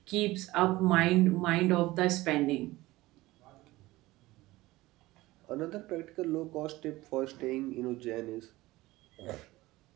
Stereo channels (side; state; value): left; quieter; 18.8 dB